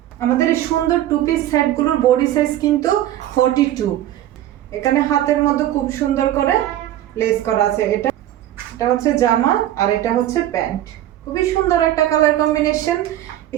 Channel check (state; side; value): quieter; left; 13.0 dB